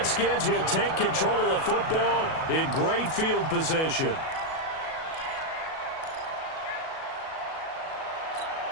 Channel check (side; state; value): right; late; 37 ms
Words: will take control of the football in great field position.